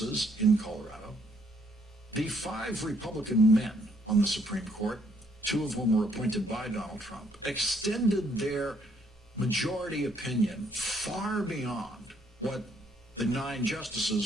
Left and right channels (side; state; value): both; normal; correlation 0.69